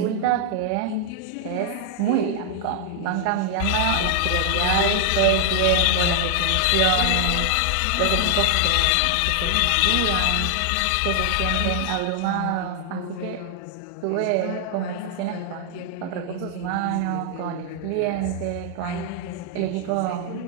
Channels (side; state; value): both; different; correlation 0.00